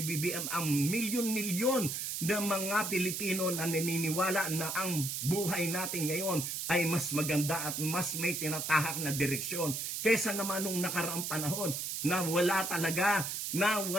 BBM ang milyon-milyon na mga Pilipino na naniniwala na ang buhay natin ngayon ay mas maganda at mas may tinatahak na direksyon kaysa naman nung nakaraang panahon na wala talaga, na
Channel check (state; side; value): noise; right; hiss, 3 dB below the sound